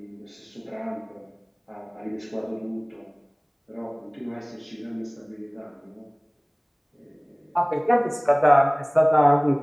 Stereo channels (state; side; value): identical; both; correlation 1.00